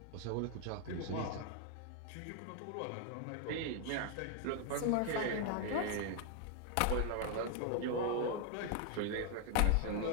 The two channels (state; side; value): different; both; correlation 0.00